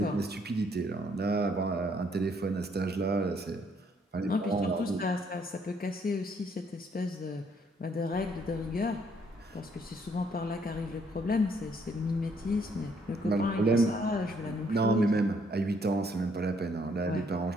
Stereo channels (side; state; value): both; normal; correlation 0.68